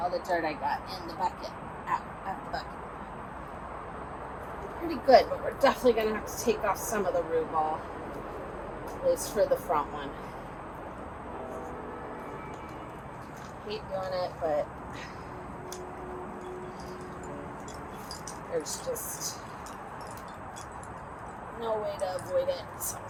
the dirt I got in the bucket, out the bucket. Pretty good, but we're definitely going to have to take off some of the root ball, at least for the front one. Hate doing it, but there's just no way to avoid it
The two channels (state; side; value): identical; both; correlation 1.00